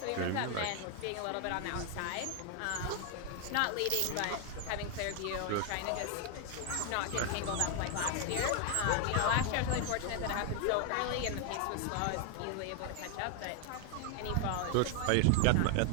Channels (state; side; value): different; both; correlation 0.01